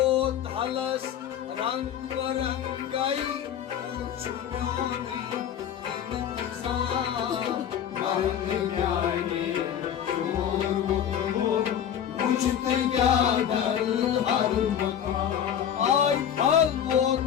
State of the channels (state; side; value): quieter; right; 9.3 dB